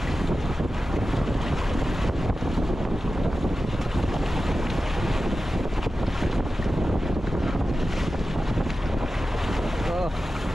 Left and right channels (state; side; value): normal; both; correlation 0.93